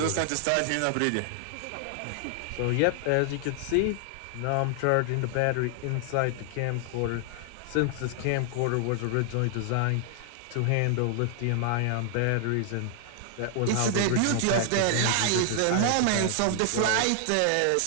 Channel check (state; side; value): different; both; correlation 0.00